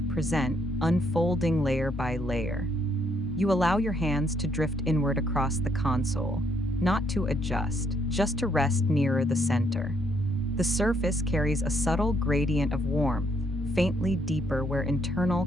present, unfolding layer by layer. You allow your hands to drift inward across the console, not to adjust, just to rest nearer the center. The surface carries a subtle gradient of warmth, faintly deeper where internal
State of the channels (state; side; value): normal; both; correlation 0.72